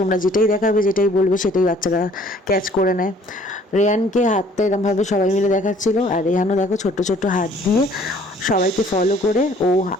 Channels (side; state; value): both; normal; correlation 0.57